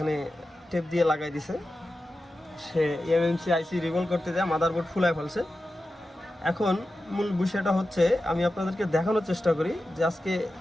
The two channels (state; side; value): normal; both; correlation 0.93